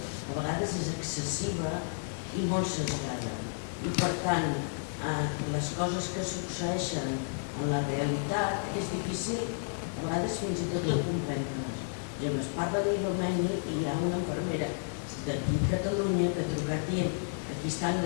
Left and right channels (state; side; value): silent; right; digital silence